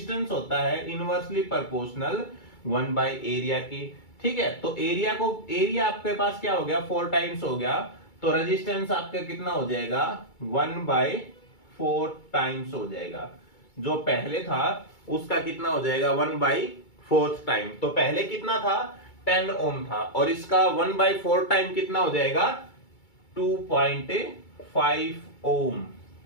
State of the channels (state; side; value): late; right; 2.3 ms